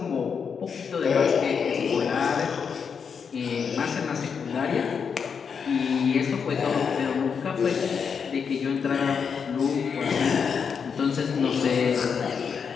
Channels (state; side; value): quieter; right; 6.4 dB